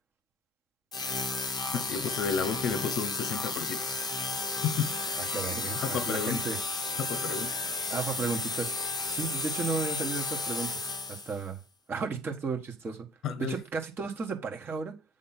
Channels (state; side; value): normal; both; correlation 0.49